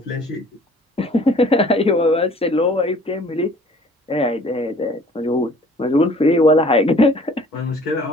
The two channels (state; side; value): normal; both; correlation 0.53